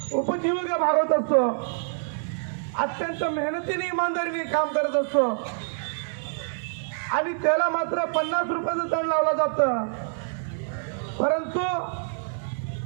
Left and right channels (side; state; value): left; silent; digital silence